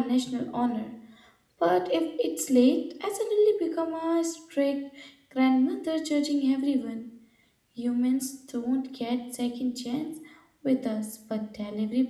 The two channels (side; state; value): both; identical; correlation 1.00